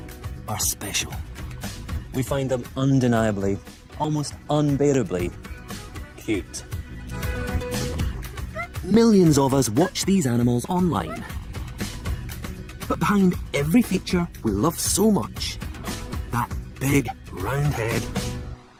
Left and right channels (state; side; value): identical; both; correlation 1.00